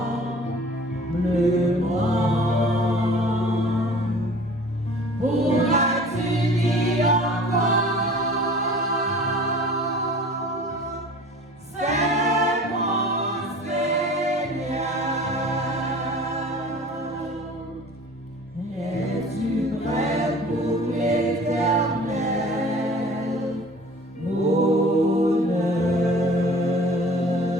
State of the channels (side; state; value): both; normal; correlation 0.45